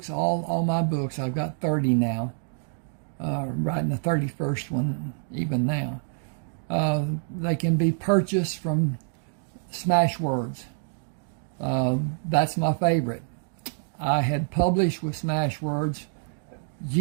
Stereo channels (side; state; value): left; silent; digital silence